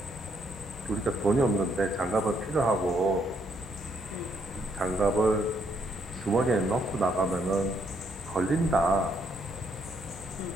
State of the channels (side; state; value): both; normal; correlation 0.73